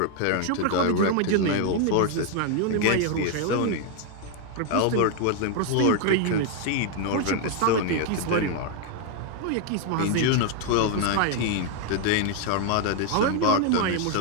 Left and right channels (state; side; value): different; both; correlation 0.01